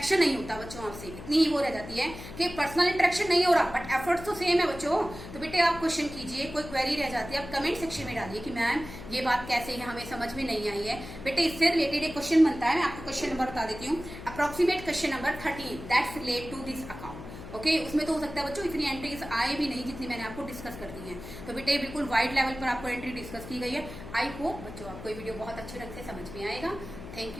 नहीं होता बच्चों आपसे, इतनी ही वो रह जाती है कि पर्सनल इंटरेक्शन नहीं हो रहा बट एफर्ट्स तो सेम है बच्चों। तो बेटे आप क्वेश्चन कीजिए, कोई क्वेरी रह जाती है आप कमेंट सेक्शन में डालिए कि मैम ये बात कैसे है, हमें समझ में नहीं आई है। बेटे इससे रिलेटेड एक क्वेश्चन बनता है, मैं आपको क्वेश्चन नंबर बता देती हूँ। Approximate question number 13 that's relate to this account. Okay, उसमें तो हो सकता है बच्चों इतनी एंट्रीज आए भी नहीं जितनी मैंने आपको डिस्कस कर दी है। तो बेटे बिल्कुल वाइड लेवल पर आपको एंट्री डिस्कस की गई है। आई होप बच्चों आपको ये वीडियो बहुत अच्छे ढंग से समझ में आएगा। Thank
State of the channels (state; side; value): noise; left; hum, 13 dB below the sound